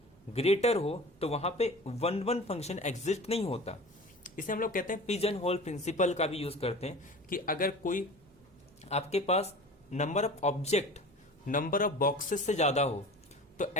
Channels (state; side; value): noise; right; hum, 29 dB below the sound